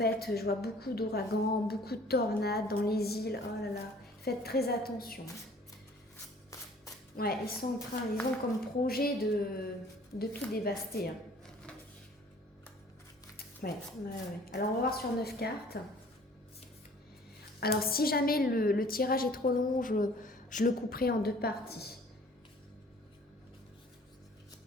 je vois beaucoup d'ouragans, beaucoup de tornades dans les îles. Oh là là, faites très attention. Ouais, ils ont comme projet de tout dévaster. Hein. Ouais. Alors on va voir sur 9 cartes. Alors si jamais le tirage est trop long, je le couperai en 2 parties.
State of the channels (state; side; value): normal; both; correlation 0.53